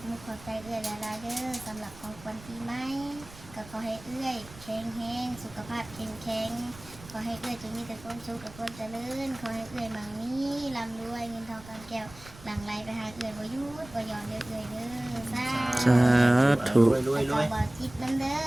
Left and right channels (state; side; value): noise; right; rumble, 18 dB below the sound